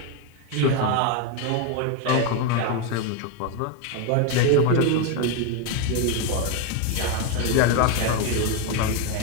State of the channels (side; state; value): both; different; correlation 0.02